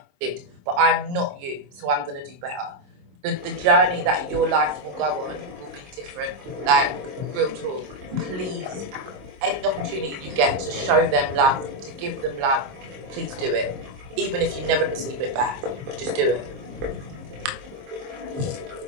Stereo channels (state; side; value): late; left; 22 ms